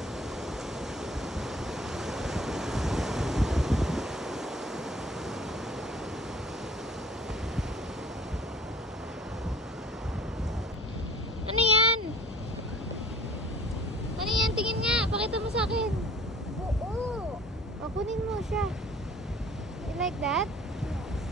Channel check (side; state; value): both; normal; correlation 0.50